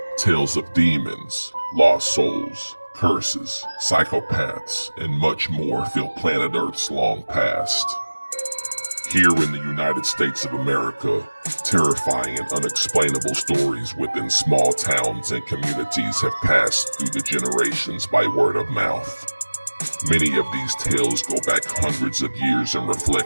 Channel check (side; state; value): both; inverted; correlation -1.00